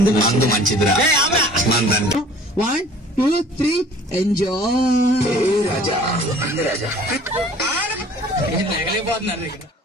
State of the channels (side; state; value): both; normal; correlation 0.49